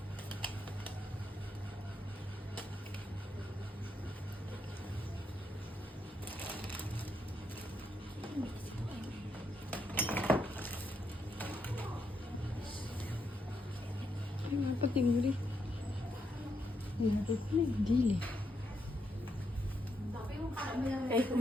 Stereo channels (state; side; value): normal; both; correlation 0.80